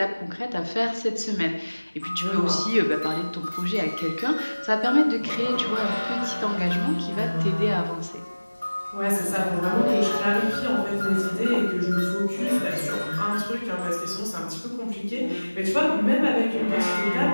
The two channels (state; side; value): inverted; both; correlation -1.00